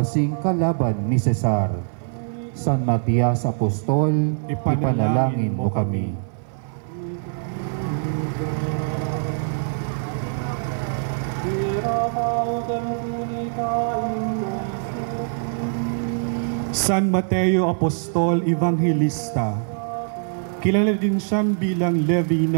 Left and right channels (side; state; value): left; silent; 58 dB below the other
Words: kalaban ni Cesar. San Matias Apostol, ipanalangin mo kami. San Mateo Apostol Evangelista, kilala din siyang bilang Levi